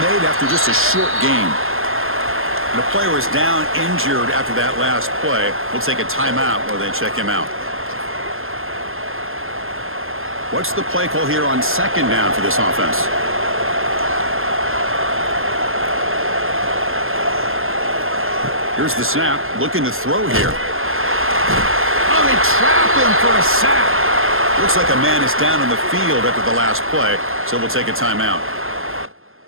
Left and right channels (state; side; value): late; left; 0.60 ms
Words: after just a short gain. And the player is down injured after that last play. We'll take a timeout while they check him out. What's the play call here on 2nd down for this offense? Here's the snap. Looking to throw here. Oh, they trap him for a sack. Looks like a man is down on the field after the last play, so we'll take a timeout.